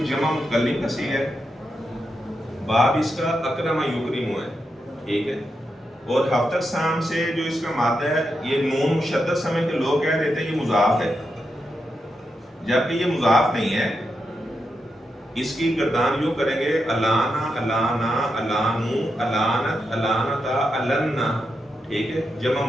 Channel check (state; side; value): normal; both; correlation 0.86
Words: جمع متکلم کا صیغہ ہے، باب اس کا اکرم یکرم ہے، ٹھیک ہے۔ اور ہفتہ اقسام سے جو اس کا مادہ ہے یہ نون مشدد سمجھ کے لوگ کہہ دیتے ہیں یہ مضاف ہے، جبکہ یہ مضاف نہیں ہے۔ اس کی گردان یوں کریں گے، الانا الانا الانو الانت الانتا النا، ٹھیک ہے۔ جمع